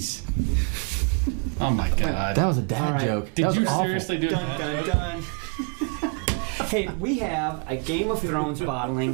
Oh my god. That was a dad All right. joke. Did That was you awful. seriously do Dun that? dun dun. Hey, we have a Game of Thrones bottling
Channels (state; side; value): quieter; left; 35.6 dB